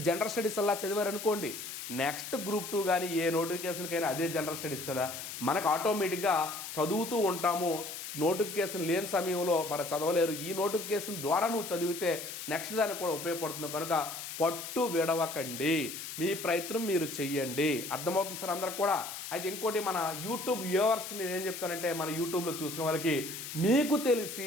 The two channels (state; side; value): noise; left; hiss, 8 dB below the sound